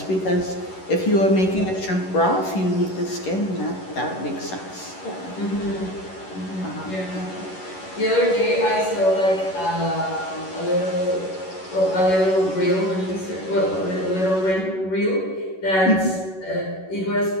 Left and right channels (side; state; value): right; late; 11 ms